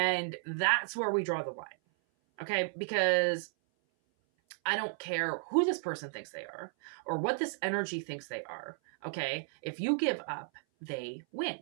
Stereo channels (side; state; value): left; silent; 55 dB below the other